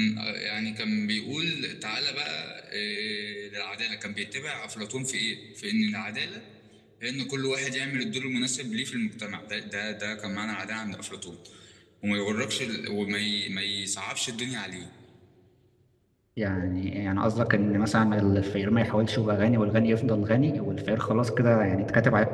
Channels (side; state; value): both; identical; correlation 1.00